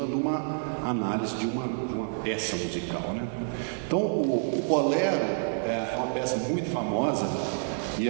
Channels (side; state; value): left; silent; 59 dB below the other